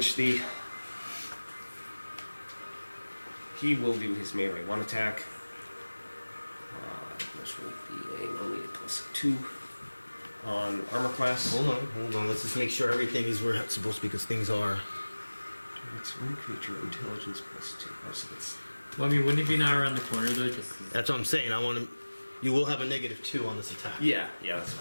he will do his melee 1 attack. Which will be only a +2 on armor class. Hold on. Let's just make sure everything is where it's supposed to be, because things are. It's one creature, intelligence +2. Oh, so that's Well, I mean, wouldn't it be now around the corner though? Just That's what I'm saying. I want to. You will have a -2 on this attack. yeah, that's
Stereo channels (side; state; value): both; inverted; correlation -1.00